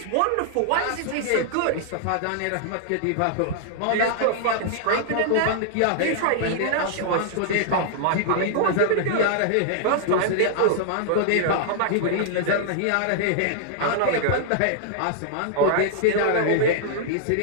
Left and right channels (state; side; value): different; both; correlation -0.01